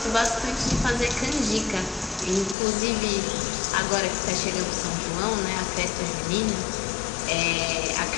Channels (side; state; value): right; drops out; at 2.6 s